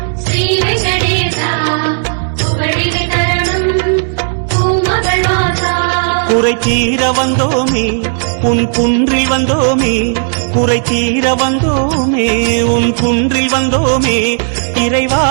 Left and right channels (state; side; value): silent; left; digital silence